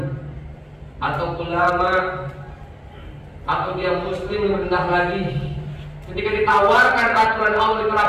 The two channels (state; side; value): identical; both; correlation 1.00